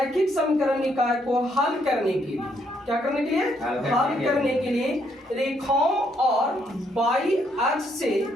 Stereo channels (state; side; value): normal; both; correlation 0.72